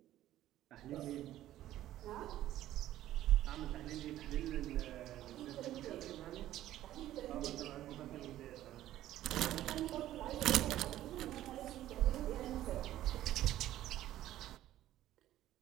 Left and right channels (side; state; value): left; quieter; 13.6 dB